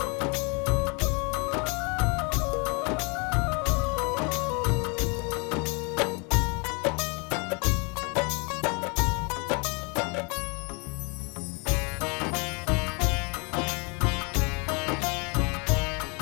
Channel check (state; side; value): quieter; right; 32.2 dB